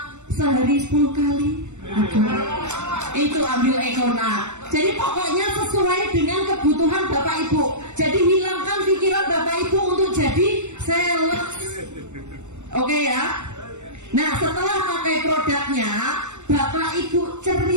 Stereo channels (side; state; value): left; late; 0.83 ms